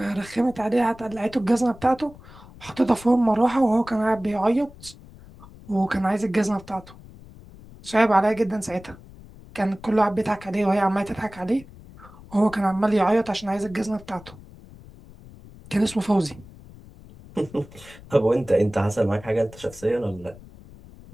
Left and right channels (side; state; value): left; noise; rumble, 20 dB below the sound